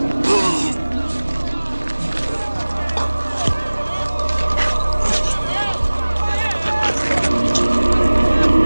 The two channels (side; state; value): both; inverted; correlation -1.00